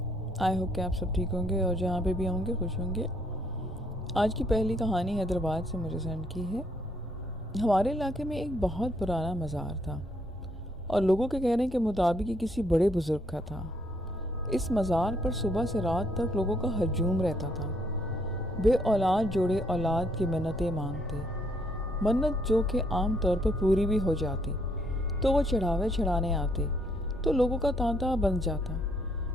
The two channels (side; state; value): both; normal; correlation 0.70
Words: آئی ہوپ کہ آپ سب ٹھیک ہوں گے اور جہاں پہ بھی ہوں گے خوش ہوں گے۔ آج کی پہلی کہانی حیدرآباد سے مجھے سینڈ کی ہے۔ ہمارے علاقے میں ایک بہت پرانا مزار تھا اور لوگوں کے کہنے کے مطابق یہ کسی بڑے بزرگ کا تھا۔ اس مزار پر صبح سے رات تک لوگوں کا ہجوم رہتا تھا۔ بے اولاد جوڑے اولاد کی منتیں مانگتے، منت جو کہ عام طور پر پوری بھی ہو جاتی تو وہ چڑھاوے چڑھانے آتے تو لوگوں کا تانتا بن جاتا۔